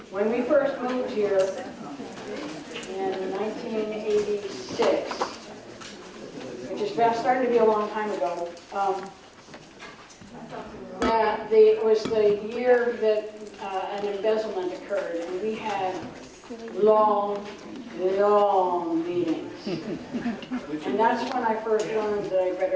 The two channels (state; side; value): identical; both; correlation 1.00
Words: When we first moved here in 1986, which is starting to be a long time ago, it was the year that an embezzlement occurred, and we had long meetings. And that's when I first learned that I